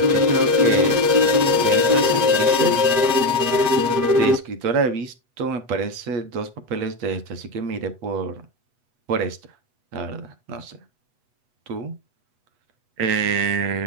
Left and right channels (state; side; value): late; left; 8.2 ms